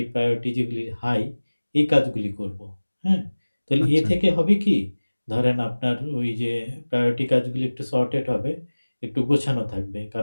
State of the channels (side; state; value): both; inverted; correlation -1.00